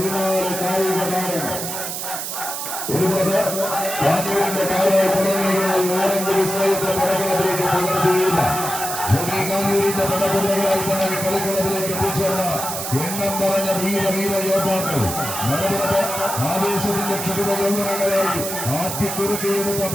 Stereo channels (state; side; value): noise; right; hiss, 5 dB below the sound